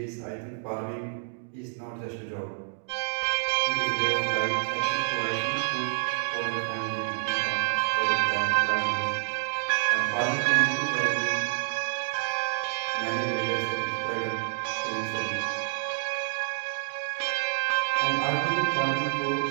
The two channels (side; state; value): left; silent; digital silence